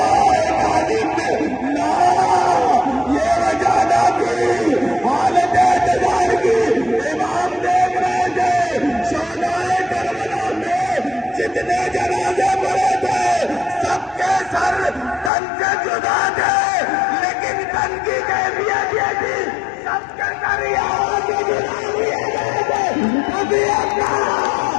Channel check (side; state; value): right; drops out; at 15.3 s